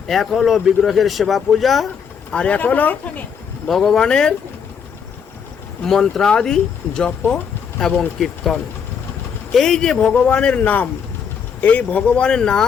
এক হলো বিগ্রহের সেবা পূজা, আর এক হলো ভগবানের মন্ত্রাদি জপ এবং কীর্তন। এই যে ভগবানের নাম, এই ভগবানের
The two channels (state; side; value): quieter; right; 7.0 dB